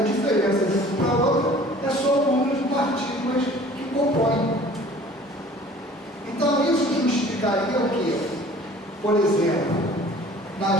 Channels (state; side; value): normal; both; correlation 0.49